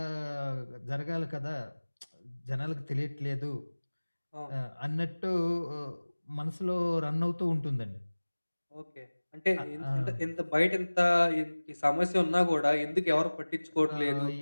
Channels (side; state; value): both; inverted; correlation -1.00